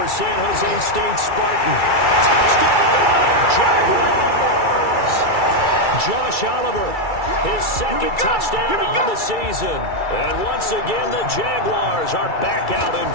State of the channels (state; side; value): late; right; 2.3 ms